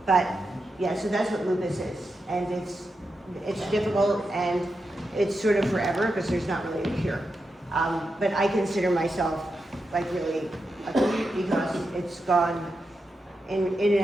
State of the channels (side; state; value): both; normal; correlation 0.87